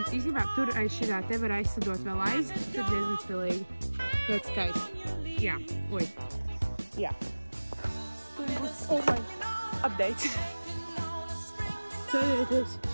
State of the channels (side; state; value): both; inverted; correlation -1.00